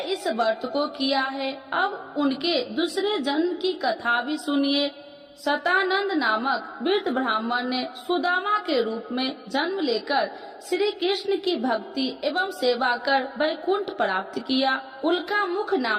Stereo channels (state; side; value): identical; both; correlation 1.00